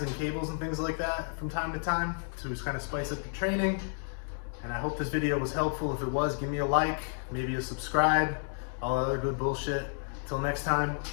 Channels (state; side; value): silent; right; 57 dB below the other